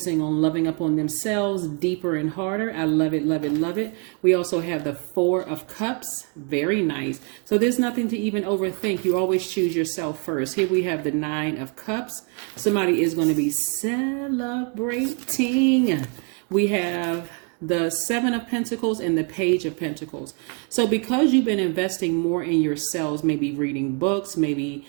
on loving up on themselves deeper and harder. I love it, love it, love it. We also have the Four of Cups. Very nice. So there's nothing to even overthink. You always choose yourself first. Here we have the Nine of Cups. Somebody is going to be celebrating. We have the Seven of Pentacles and the Page of Pentacles. So because you've been investing more in yourselves, maybe reading books, maybe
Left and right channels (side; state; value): left; quieter; 36.1 dB